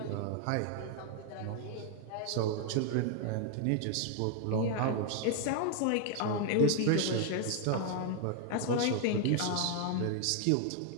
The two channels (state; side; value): different; both; correlation 0.00